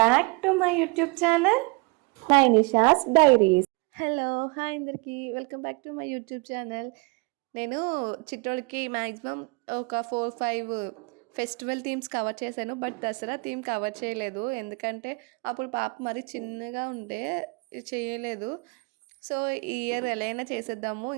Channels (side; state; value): left; quieter; 29.3 dB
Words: to my YouTube channel, Nisha's Diaries. Hello hi అందరికీ welcome back to my YouTube channel. నేను చిట్టోడికి maximum ఒక 4-5 festival themes cover చేశాను. But Dussehra theme cover చేయలేదు, ఎందుకంటే అప్పుడు పాప మరి చిన్నగా ఉంటే చేయలేదు. సో ఈ ఇయర్ ఎలా అయినా చేసేద్దాము,